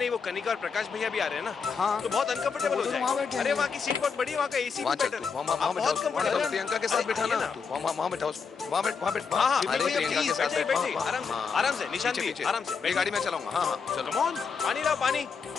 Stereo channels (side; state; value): right; quieter; 5.7 dB